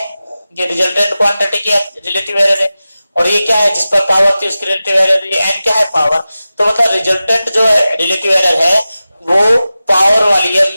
ये रिजल्टेंट क्वांटिटी की रिलेटिव एरर है, और ये क्या है, जिस पर पावर थी उसकी रिलेटिव एरर, ये n क्या है, पावर। तो मतलब रिजल्टेंट जो है रिलेटिव एरर है वो पावर वाली है,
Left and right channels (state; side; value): inverted; both; correlation -0.95